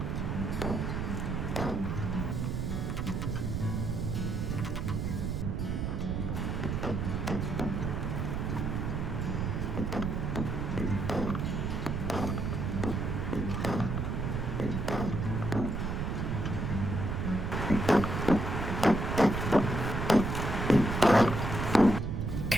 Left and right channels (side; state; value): right; noise; rumble, 1 dB below the sound